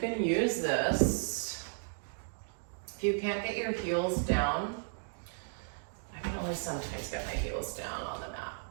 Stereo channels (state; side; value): silent; left; digital silence